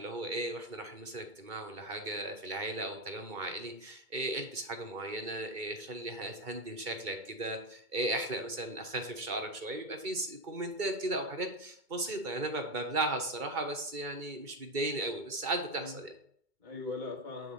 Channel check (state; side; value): late; left; 2.2 ms